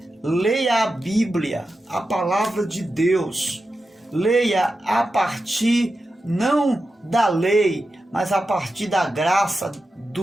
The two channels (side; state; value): both; normal; correlation 0.91